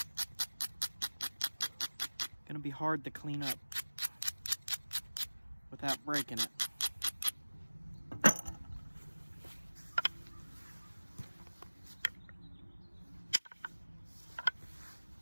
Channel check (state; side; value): inverted; both; correlation -1.00